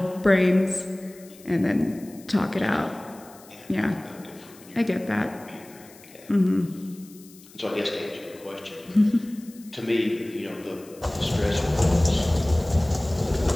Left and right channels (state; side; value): noise; left; hiss, 23 dB below the sound